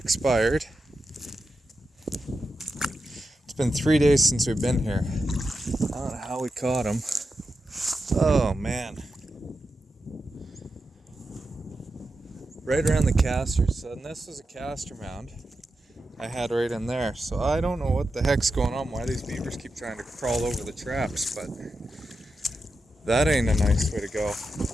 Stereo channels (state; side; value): normal; both; correlation 0.89